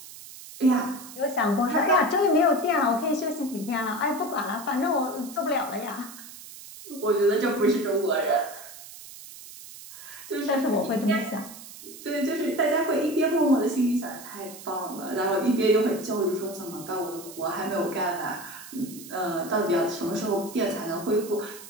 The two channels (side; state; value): right; noise; hiss, 15 dB below the sound